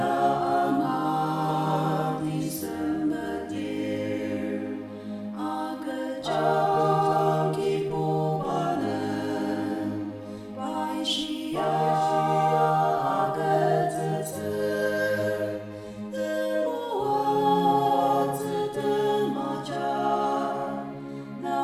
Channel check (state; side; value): identical; both; correlation 1.00